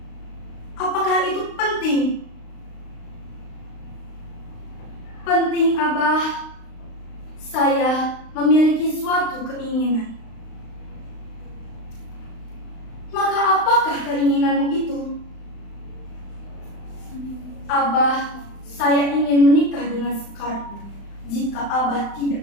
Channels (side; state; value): right; late; 35 ms